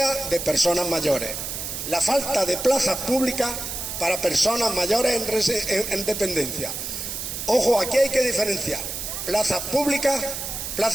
de personas mayores, la falta de plazas públicas para personas mayores en dependencia. Ojo, aquí hay que diferenciar plazas públicas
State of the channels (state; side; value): noise; right; hiss, 5 dB below the sound